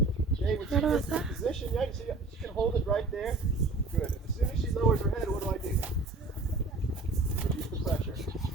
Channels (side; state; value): left; quieter; 3.5 dB